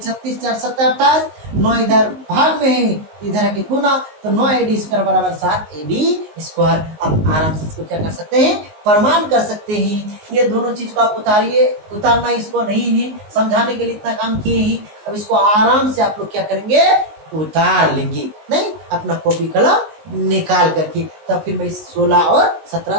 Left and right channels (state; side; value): late; left; 19 ms